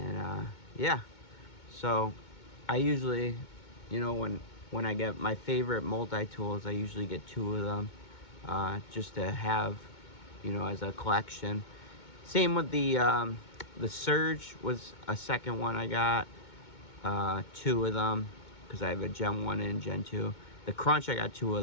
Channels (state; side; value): late; right; 2.2 ms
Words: yeah, so I usually, you know, when I get my favorite multi-tools, I usually get 2 of them, just to have, you know, as a collection. Same with the Surge was a second one I got, 2 of them, because I have a Gen 1 and Gen 2. The Crunch, I got 2